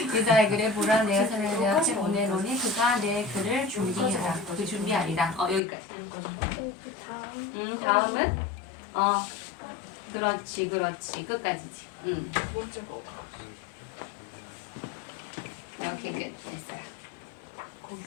이사야 그래 보라 내가 사람을 내 앞에 보내노니 그가 내 글을 준비하라. 그 준비하리라. 여기까지. 그 다음. 다음은 그렇지 끝까지지. 오케이 끝 됐어요.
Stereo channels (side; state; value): right; drops out; at 5.6 s